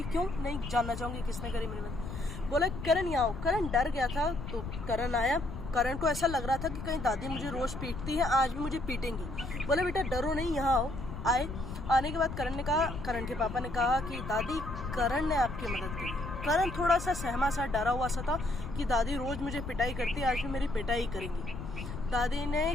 क्यों नहीं जानना चाहूँगी किसने करी मेरी मदद। बोला करण यहाँ आओ। करण डर गया था। तो करण आया। करण को ऐसा लग रहा था कि कहीं दादी मुझे रोज़ पीटती है, आज भी मुझे पीटेंगी। बोले बेटा डरो नहीं, यहाँ आओ। आए। आने के बाद करण के पापा ने कहा कि दादी करण ने आपकी मदद की। करण थोड़ा सा सहमा सा, डरा हुआ सा था कि दादी रोज़ मुझे पिटाई करती है, आज भी मेरी पिटाई करेंगी। दादी ने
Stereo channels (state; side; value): noise; left; rumble, 8 dB below the sound